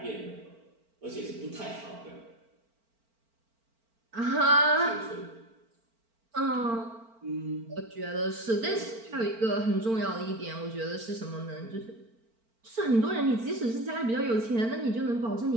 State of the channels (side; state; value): left; late; 4.4 ms